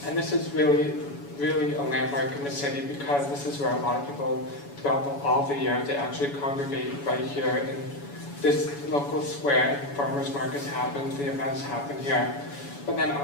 And this is really a landmark in the city, because this is where a lot of people throughout all the year, they actually congregate right here in this local square, and farmers markets happen, the events happen here. But then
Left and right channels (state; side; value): late; right; 7.1 ms